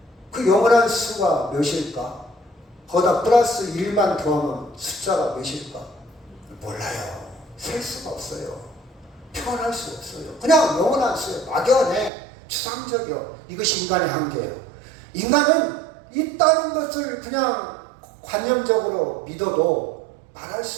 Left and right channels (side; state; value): left; drops out; at 12.1 s